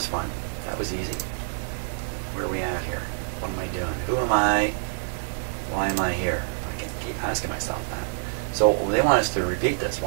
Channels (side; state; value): left; silent; 61 dB below the other